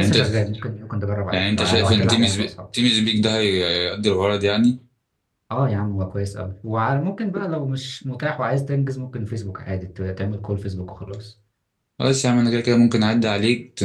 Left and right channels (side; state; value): both; identical; correlation 1.00